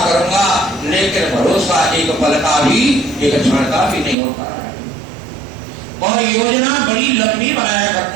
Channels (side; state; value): left; drops out; at 4.2 s